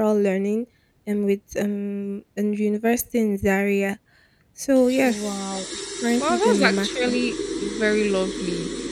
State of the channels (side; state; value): both; identical; correlation 1.00